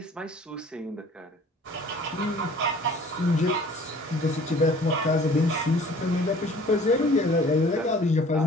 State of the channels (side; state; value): both; normal; correlation 0.50